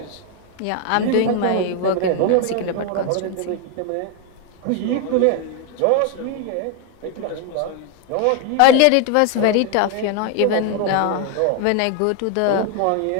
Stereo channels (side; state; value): both; different; correlation 0.01